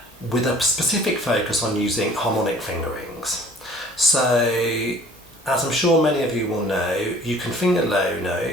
with a specific focus on using harmonic fingerings. So as I'm sure many of you will know, you can finger low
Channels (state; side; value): normal; both; correlation 0.51